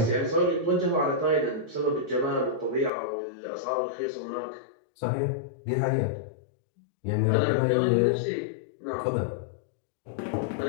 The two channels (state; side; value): drops out; right; at 2.9 s